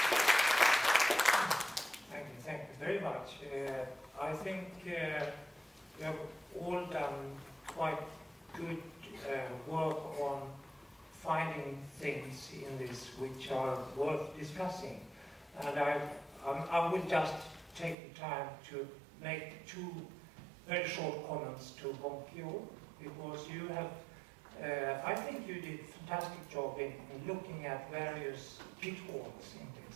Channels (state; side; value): drops out; left; at 17.9 s